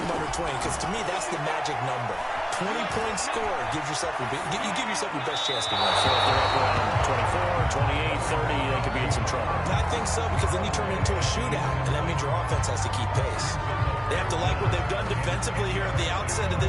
under 20, because to me, that's the magic number. 20 points scored gives yourself you give yourself your best chance to win. So if they're up around 24, 28, 30, they could be in some trouble. I think so, because then you turn it into a shootout, and that means your offense has to keep pace. They have to like what they've done defensively here at the outset of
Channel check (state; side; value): identical; both; correlation 1.00